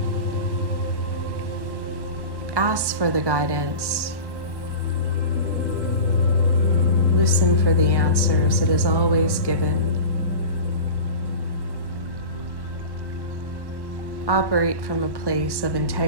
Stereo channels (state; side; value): late; left; 1.1 ms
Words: Ask for the guidance. Listen for the answers. It is always given. Operate from a place of